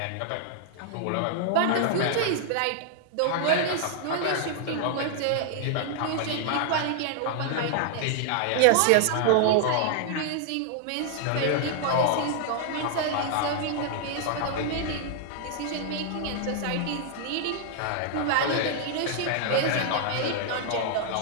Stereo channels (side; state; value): both; different; correlation 0.00